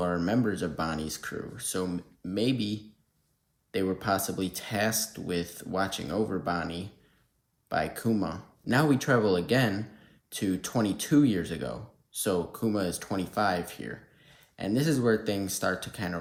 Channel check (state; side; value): identical; both; correlation 1.00